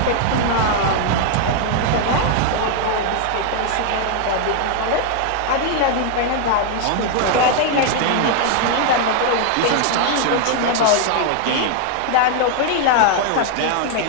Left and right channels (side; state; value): both; different; correlation 0.00